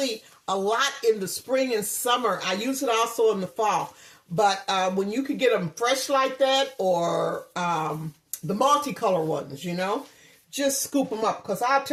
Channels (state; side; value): identical; both; correlation 1.00